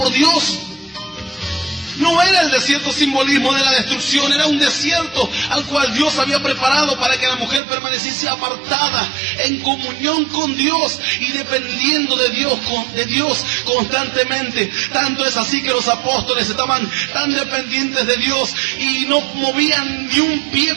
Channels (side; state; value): left; drops out; at 7.6 s